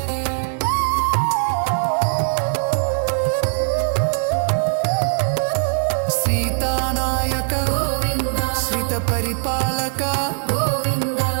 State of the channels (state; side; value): silent; left; digital silence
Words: ಸೀತಾನಾಯಕ ಗೋವಿಂದ ಶ್ರಿತ ಪರಿಪಾಲಕ ಗೋವಿಂದ